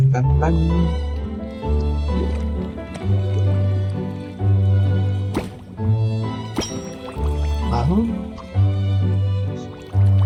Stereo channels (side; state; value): both; identical; correlation 1.00